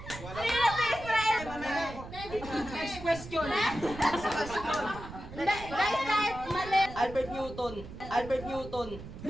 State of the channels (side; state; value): right; noise; rumble, 12 dB below the sound